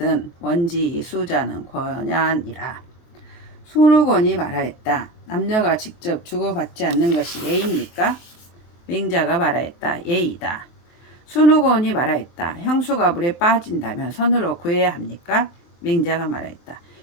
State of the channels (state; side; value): late; right; 23 ms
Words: 원지이 수자는 권야니라. 순우곤이 말하였다. 남녀가 직접 주고받지 않는 것이 예입니까? 맹자가 말하였다. 예이다. 순우곤이 말하였다. 형수가 물에 빠진다면 손으로 구해야 합니까? 맹자가 말하였다.